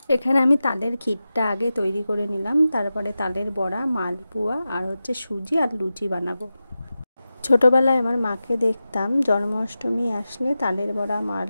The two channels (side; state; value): both; inverted; correlation -0.93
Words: এখানে আমি তালের ক্ষীরটা আগে তৈরি করে নিলাম, তারপরে তালের বড়া, মালপোয়া আর সুজি আর লুচি বানাবো। ছোটোবেলায় আমার মাকে দেখতাম জন্মাষ্টমী আসলে তালের বড়া,